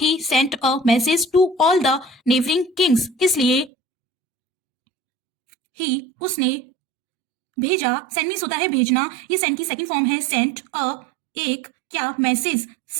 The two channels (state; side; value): drops out; left; at 3.7 s